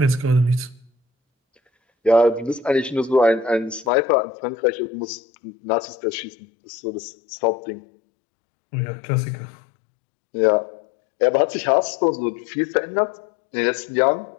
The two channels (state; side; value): drops out; right; at 3.9 s